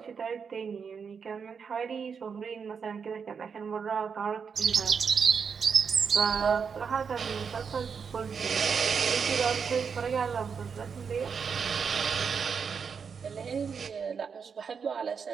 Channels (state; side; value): quieter; left; 6.2 dB